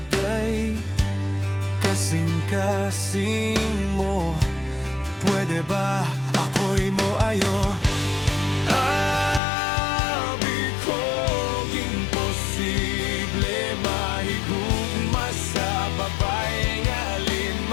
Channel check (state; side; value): drops out; right; at 9.4 s